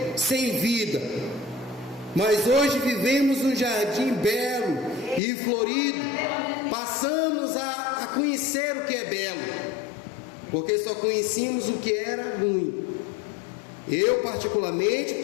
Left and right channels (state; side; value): drops out; right; at 5.2 s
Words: sem vida, mas hoje vivemos um jardim belo e florido. Passamos a conhecer o que é belo, porque só conhecíamos o que era ruim. Eu particularmente